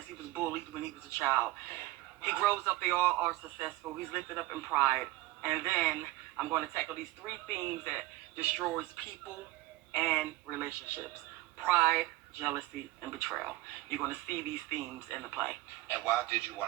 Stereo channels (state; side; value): quieter; left; 18.5 dB